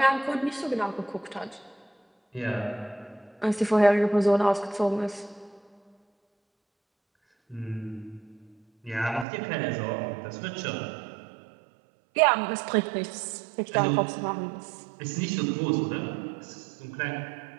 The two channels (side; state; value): left; drops out; at 9.2 s